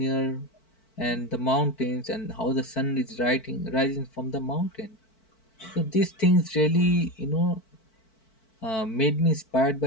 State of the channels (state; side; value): late; right; 4.5 ms